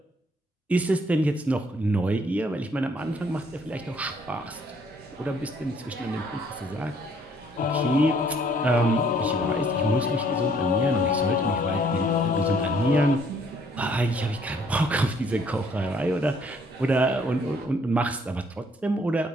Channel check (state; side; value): normal; both; correlation 0.63